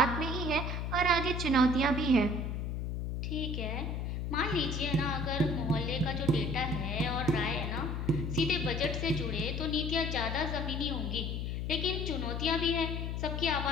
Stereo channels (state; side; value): noise; left; hum, 2 dB below the sound